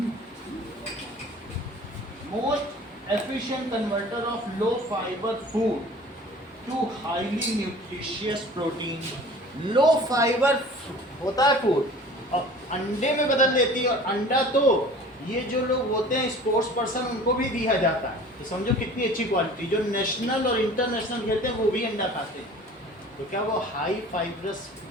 most efficient converter of low fibre food to highly nutritious protein. Low fibre होता है फूड और अंडे में बदल देती है, और अंडा तो ये जो लोग होते हैं स्पोर्ट्स पर्सन उनको भी दिया जाता है। तो समझो कितनी अच्छी क्वालिटी। जो नेशनल और इंटरनेशनल खेलते हैं वो भी अंडा खाते हैं। तो क्या वो हाई फाइब्रस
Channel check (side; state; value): both; normal; correlation 0.45